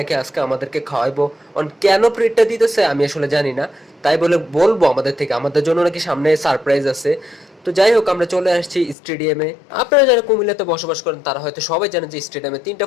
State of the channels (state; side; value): drops out; right; at 9.0 s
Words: আজকে আমাদেরকে খাওয়াইবো। কেন ট্রিটটা দিতেছে আমি আসলে জানি না, তাই বলে বলবো আমাদের থেকে, আমাদের জন্য নাকি সামনে সারপ্রাইজ আছে। তো যাই হোক, আমরা চলে আসছি স্টেডিয়ামে। আপনারা যারা কুমিল্লাতে বসবাস করেন তারা হয়তো সবাই জানেন যে স্টেডিয়ামে 3টা